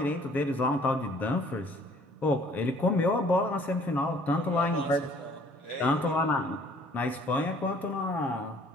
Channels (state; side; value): normal; both; correlation 0.57